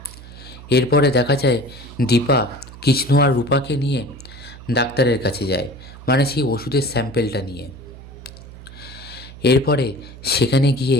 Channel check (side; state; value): right; noise; hum, 16 dB below the sound